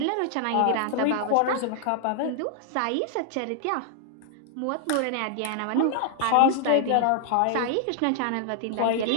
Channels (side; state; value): both; different; correlation 0.00